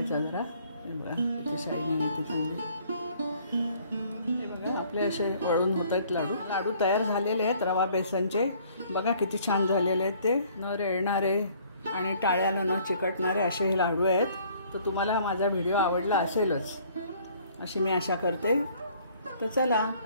जरा. हे बघा किती शायनिंग येते चांगली. हे बघा आपले असे वळून होत आहेत लाडू. लाडू तयार झालेले आहेत रवा बेसनचे. बघा किती छान झालेले आहेत ते. न रेळणारे आणि टाळ्याला न चिकटणारे असे हे लाडू आहेत. तर तुम्हाला माझा व्हिडिओ आवडला असेलच अशी मी आशा करते. तर चला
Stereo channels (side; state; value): both; inverted; correlation -0.58